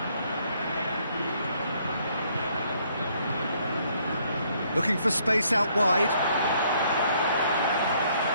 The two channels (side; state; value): both; inverted; correlation -0.67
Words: Looking for space out wide.